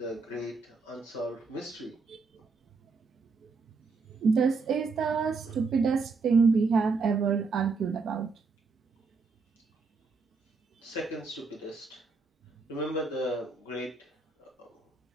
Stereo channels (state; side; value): quieter; left; 4.3 dB